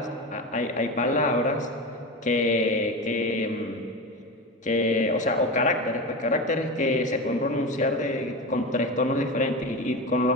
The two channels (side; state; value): both; normal; correlation 0.23